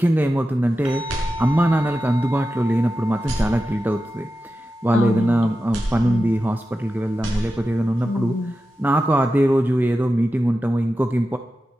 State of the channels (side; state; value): both; normal; correlation 0.92